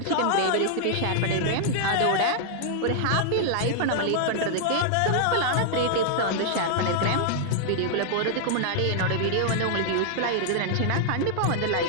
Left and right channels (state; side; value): different; both; correlation -0.01